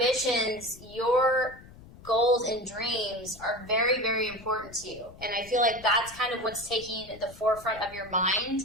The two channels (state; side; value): noise; left; rumble, 20 dB below the sound